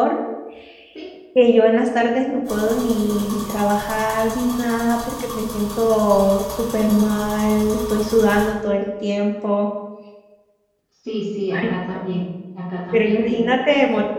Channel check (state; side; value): identical; both; correlation 1.00